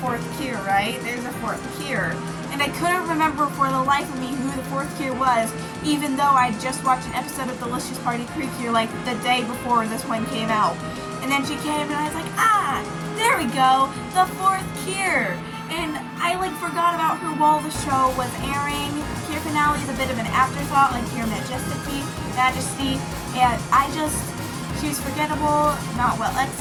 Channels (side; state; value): both; identical; correlation 1.00